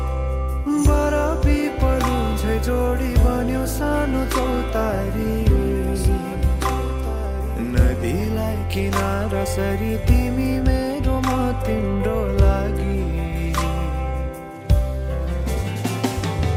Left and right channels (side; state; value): both; identical; correlation 1.00